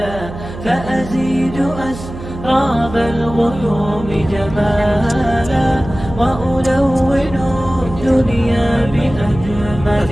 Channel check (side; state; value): right; noise; hum, 12 dB below the sound